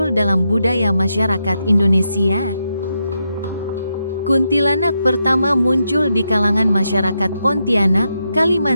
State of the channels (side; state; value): both; inverted; correlation -0.84